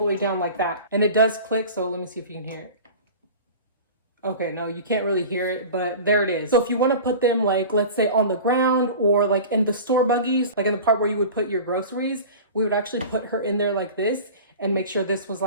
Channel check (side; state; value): both; inverted; correlation -0.37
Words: way down like that. And it does click, so let me see if you can hear it. Okay, no, you can't really hear it, but there it is. So if you want to put them like, let's say on the ground or like in the store buggies, like in the part where you would put your groceries, we would actually put her in there like this and make sure this was